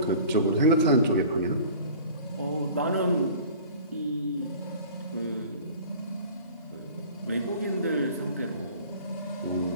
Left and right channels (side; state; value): both; inverted; correlation -0.44